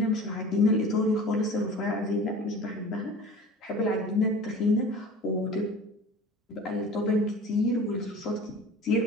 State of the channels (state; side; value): normal; both; correlation 0.40